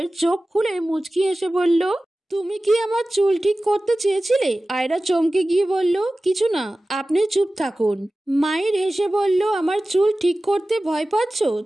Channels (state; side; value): normal; both; correlation 0.96